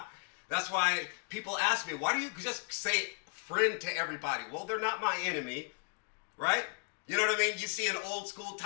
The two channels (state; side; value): quieter; right; 38.1 dB